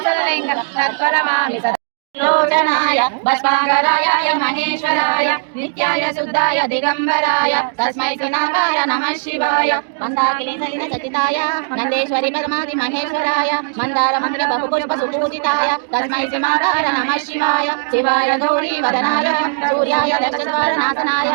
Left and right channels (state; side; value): silent; left; digital silence